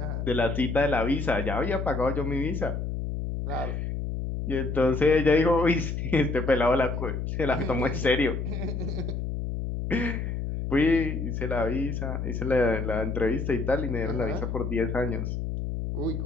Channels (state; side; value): noise; left; hum, 3 dB below the sound